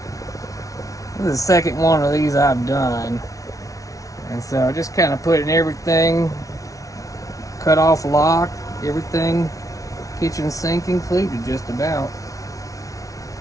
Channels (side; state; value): right; late; 0.17 ms